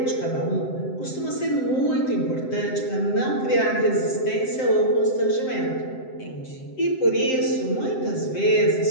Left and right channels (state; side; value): late; right; 7.7 ms